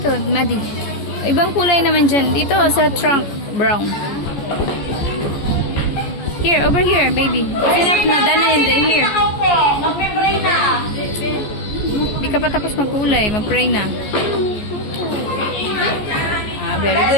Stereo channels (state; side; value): late; right; 14 ms